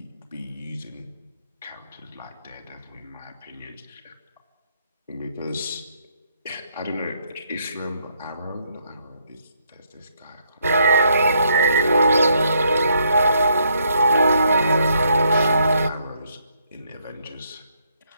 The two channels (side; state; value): both; inverted; correlation -0.73